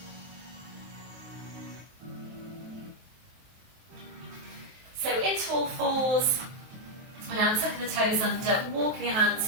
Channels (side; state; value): left; late; 23 ms